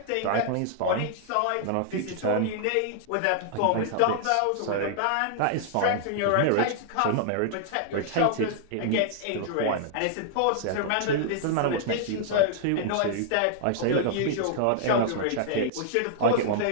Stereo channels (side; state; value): both; different; correlation -0.01